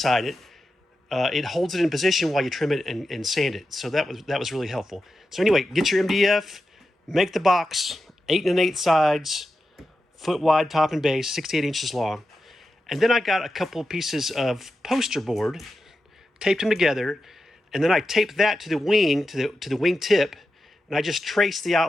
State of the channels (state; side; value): normal; both; correlation 0.90